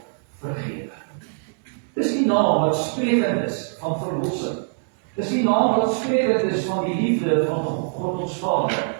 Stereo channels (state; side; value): silent; left; digital silence